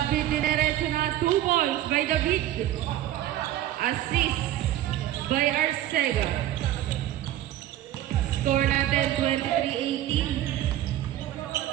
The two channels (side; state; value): left; quieter; 13.1 dB